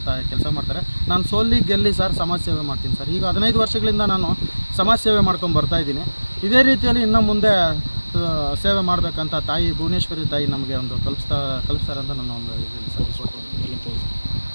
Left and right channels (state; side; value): inverted; both; correlation -1.00